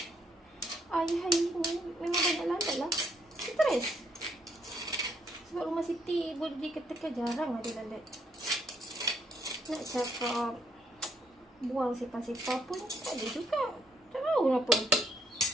hari-hari ni memang banyak lalat lah. Stres. Sebab rumah Siti boleh dikatakan jarang ada lalat. Nak cakap buang sepah-sepah pun tak ada juga. Tak tahu kenapa.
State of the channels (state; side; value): normal; both; correlation 0.71